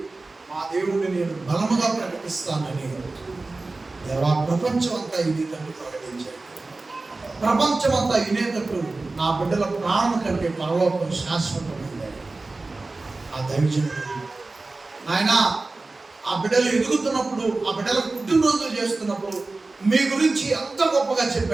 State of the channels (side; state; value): left; quieter; 3.4 dB